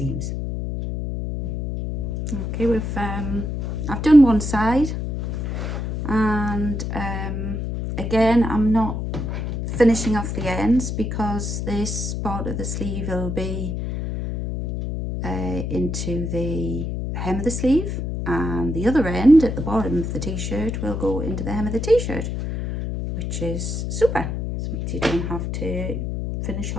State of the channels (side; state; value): left; noise; hum, 3 dB below the sound